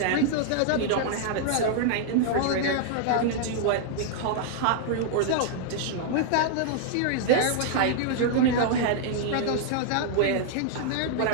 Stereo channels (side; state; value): both; different; correlation -0.01